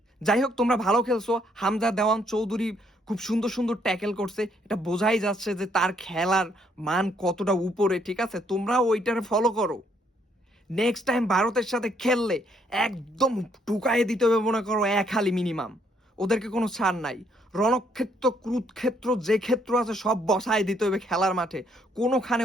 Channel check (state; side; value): normal; both; correlation 0.70